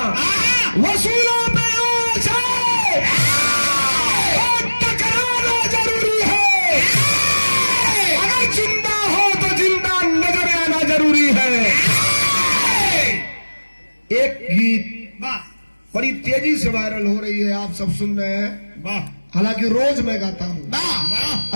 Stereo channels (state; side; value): inverted; both; correlation -1.00